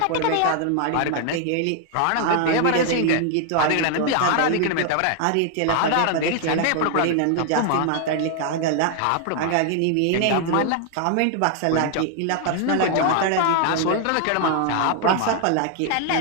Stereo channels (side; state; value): both; different; correlation 0.00